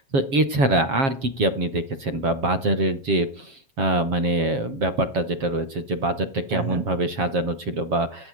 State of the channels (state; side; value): late; left; 7.3 ms